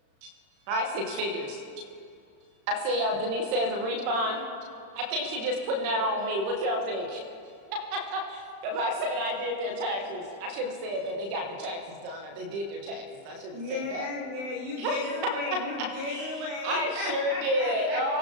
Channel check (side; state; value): left; late; 35 ms